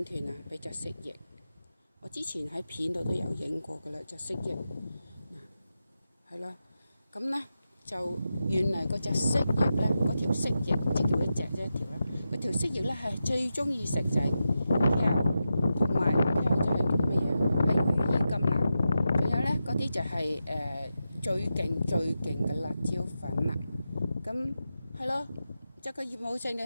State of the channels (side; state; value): both; inverted; correlation -0.89